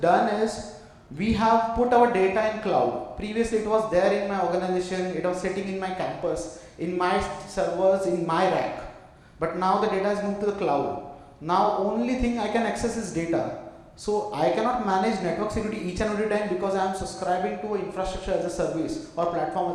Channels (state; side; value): identical; both; correlation 1.00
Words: done is we have put our data in cloud. Previously it was there in my organization, it was sitting in my campus. in my servers, in my rack. But now the data is moved to the cloud. Now only thing I can access is data. So I cannot manage network security each and every time because I am subscribing to infrastructure as a service or platform